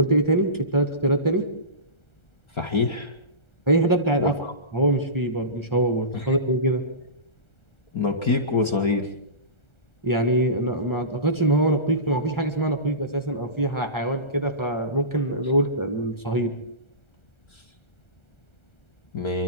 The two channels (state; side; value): late; right; 1.3 ms